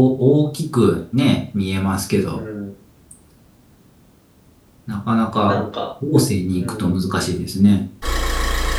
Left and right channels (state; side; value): identical; both; correlation 1.00